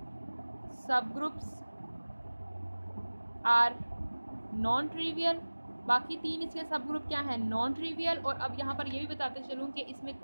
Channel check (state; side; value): inverted; both; correlation -1.00